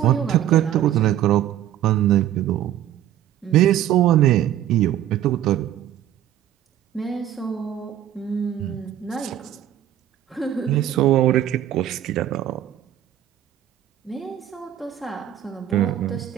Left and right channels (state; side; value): quieter; left; 11.6 dB